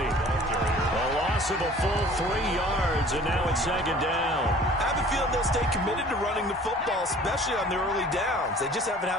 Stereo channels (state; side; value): normal; both; correlation 0.49